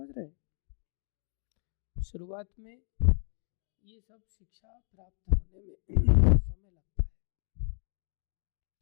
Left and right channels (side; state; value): right; silent; digital silence